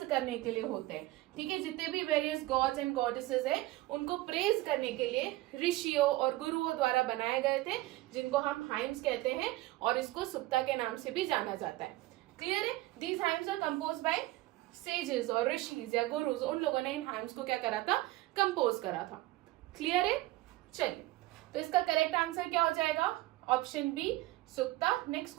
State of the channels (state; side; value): quieter; left; 18.1 dB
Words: करने के लिए होते हैं, ठीक है। जितने भी वेरियस गॉड्स एंड गॉडेसेस है उनको प्रेज करने के लिए ऋषियों और गुरुओं द्वारा बनाए गए थे, जिनको हम हाइम्स कहते हैं, और इसको सुक्ता के नाम से भी जाना जाता है। क्लियर है। These hymns are composed by sages और ऋषिज या गुरुज, उन लोगों ने इन हाइम्स को क्या करा था, कंपोज करा था। क्लियर है। चलिए, तो इसका करेक्ट आंसर क्या हो जाएगा, option B Sukta. Next